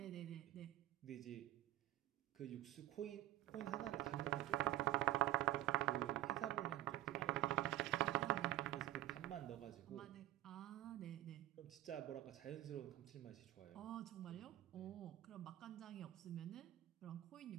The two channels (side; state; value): left; quieter; 15.1 dB